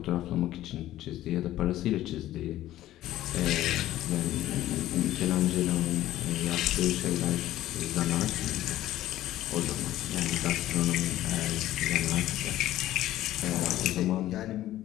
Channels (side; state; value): right; quieter; 14.2 dB